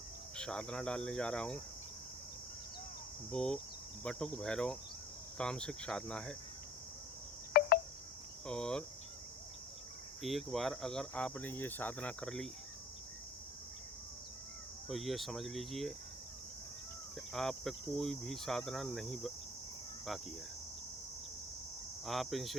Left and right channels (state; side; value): normal; both; correlation 0.50